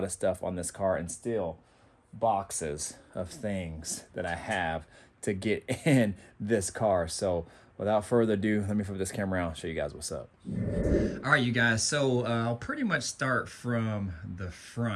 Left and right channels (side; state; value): both; identical; correlation 1.00